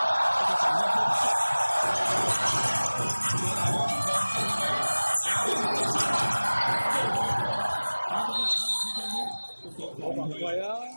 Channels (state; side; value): inverted; both; correlation -1.00